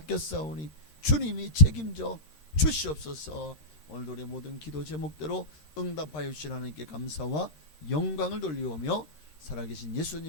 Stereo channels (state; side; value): late; right; 13 ms